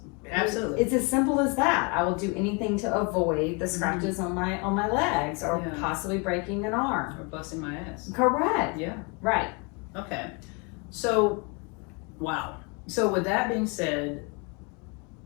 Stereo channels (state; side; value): quieter; right; 31.7 dB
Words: Absolutely. It's as simple as that. I will do anything to avoid the scratches on my legs or possibly breaking an arm. Or busting my ass. Correct. Yeah. Right. Okay. So, wow. So with that being said,